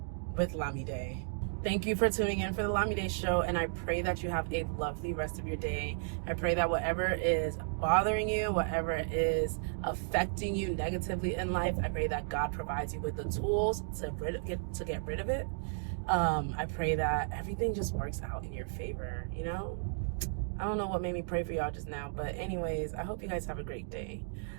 with Lamide. Thank you for tuning in for the Lamide show, and I pray that you have a lovely rest of your day. I pray that whatever is bothering you, whatever is affecting you negatively in life, I pray that God provides you with the tools to get rid of it. I pray that everything just works out in your favor, you know? I don't know what made me pray for y'all just now, but anyways, I hope you guys have a great day.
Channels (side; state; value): left; silent; digital silence